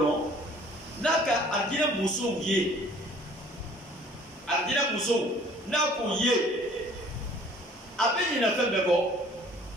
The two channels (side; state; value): both; normal; correlation 0.53